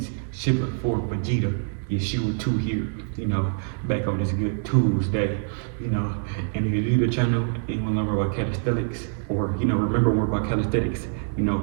Shipper for Vegeta, Yeshua 2 here, back on this good Tuesday, and if you're new to the channel and you want to learn more about calisthenics, or, remember more about calisthenics,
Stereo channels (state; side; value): silent; left; digital silence